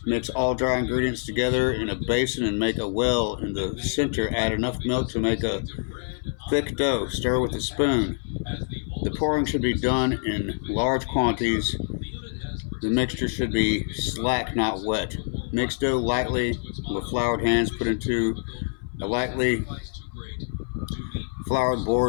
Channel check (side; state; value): right; silent; 57 dB below the other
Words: mix all dry ingredients together in a basin and make a well in the center. Add enough milk to make a thick dough. Stir with a spoon. The pouring should be done in large quantities. The mixture should be slack, not wet. Mix dough lightly with floured hands. Put into a lightly floured